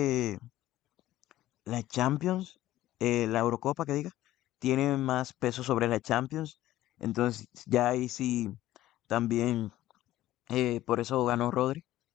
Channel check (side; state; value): right; quieter; 14.6 dB